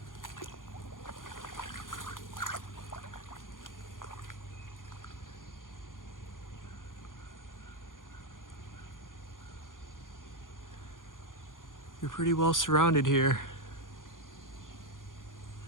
You're pretty well surrounded here.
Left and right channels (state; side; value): late; right; 0.89 ms